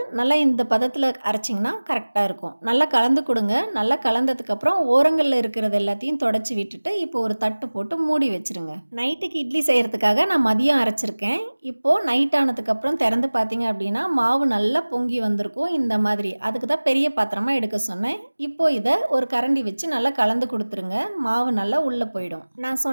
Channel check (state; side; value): inverted; both; correlation -1.00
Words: நல்லா இந்த பதத்தில் அரைச்சிங்கன்னா கரெக்டாக இருக்கும். நல்லா கலந்து கொடுங்க. நல்லா கலந்ததுக்கப்புறம் ஓரங்களில் இருக்கிறது எல்லாத்தையும் தொடச்சி விட்டுட்டு இப்போ ஒரு தட்டு போட்டு மூடி வச்சுருங்க. நைட்டுக்கு இட்லி செய்கிறதுக்காக நான் மதியம் அரைச்சிருக்கேன். இப்போது நைட் ஆனதுக்கப்புறம் திறந்து பார்த்தீங்க அப்படின்னா மாவு நல்லா பொங்கி வந்திருக்கும் இந்த மாதிரி. அதுக்கு தான் பெரிய பாத்திரமாக எடுக்க சொன்னேன். இப்போது இதை ஒரு கரண்டி வச்சு நல்லா கலந்து கொடுத்துருங்க. மாவு நல்லா உள்ளே போயிடும். நான்